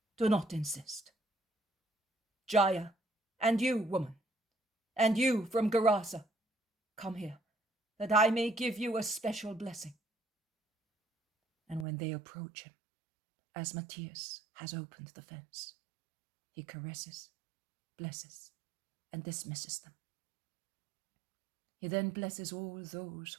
do not insist. Jaya, and you, woman, and you from Gerasa, come here, that I may give you a special blessing. And when they approach him, as Matthias has opened the fence, he caresses, blesses, and dismisses them. He then blesses all those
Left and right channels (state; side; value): drops out; left; at 11.9 s